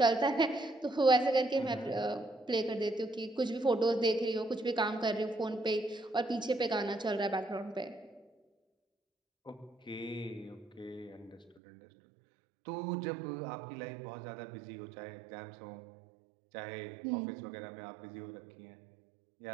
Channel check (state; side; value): drops out; left; at 11.6 s